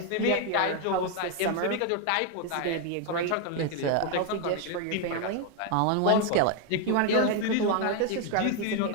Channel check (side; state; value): both; different; correlation 0.01